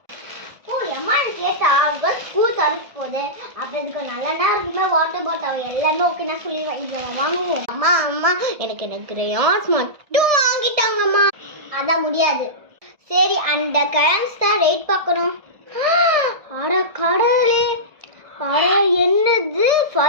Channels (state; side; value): late; left; 1.6 ms